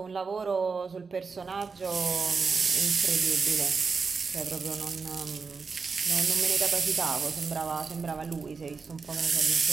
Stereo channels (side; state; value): left; quieter; 4.9 dB